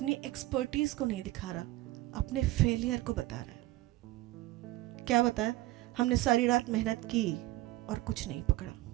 एक्सपर्टीज को नहीं दिखा रहा, अपने फेलियर को बता रहा है। क्या बताया? हमने सारी रात मेहनत की और कुछ नहीं पकड़ा।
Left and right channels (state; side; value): quieter; left; 17.4 dB